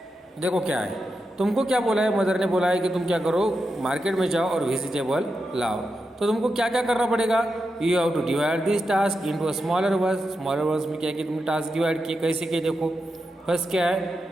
देखो क्या है, तुमको क्या बोला है, mother ने बोला है कि तुम क्या करो, मार्केट में जाओ और वेजिटेबल लाओ। तो तुमको क्या क्या करना पड़ेगा, you have to divide this task into a smaller verse. Smaller verse में क्या है कि तुमने टास्क डिवाइड किए, कैसे किए देखो। फर्स्ट क्या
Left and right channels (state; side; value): normal; both; correlation 0.88